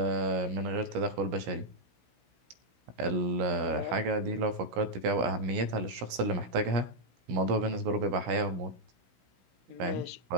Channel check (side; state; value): left; late; 16 ms